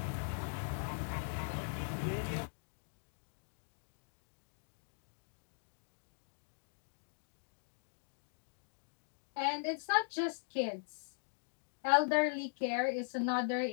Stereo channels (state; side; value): silent; right; digital silence